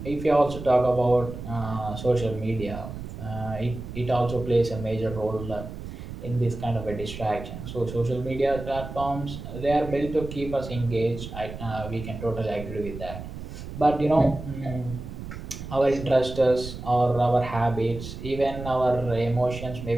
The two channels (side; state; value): right; noise; rumble, 10 dB below the sound